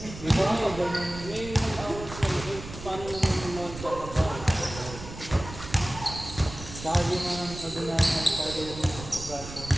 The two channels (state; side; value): noise; right; rumble, 12 dB below the sound